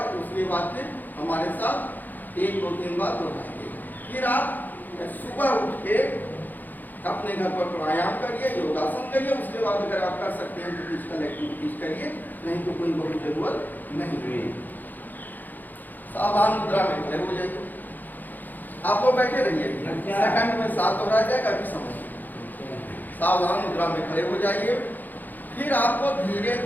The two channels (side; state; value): right; late; 0.085 ms